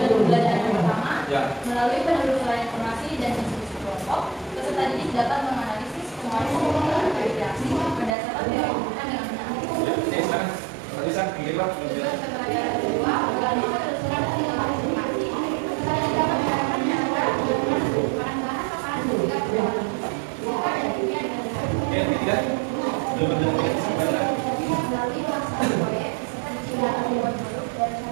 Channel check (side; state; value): left; drops out; at 8.1 s